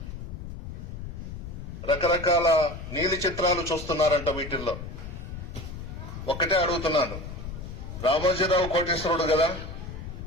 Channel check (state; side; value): noise; left; rumble, 9 dB below the sound